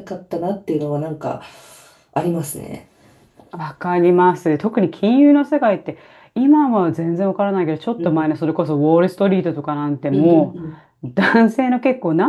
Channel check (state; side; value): identical; both; correlation 1.00